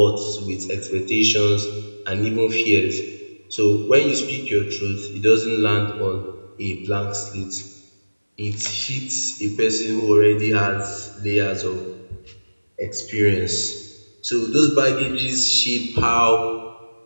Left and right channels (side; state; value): both; inverted; correlation -1.00